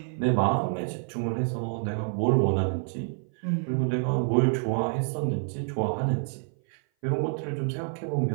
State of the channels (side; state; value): left; silent; 57 dB below the other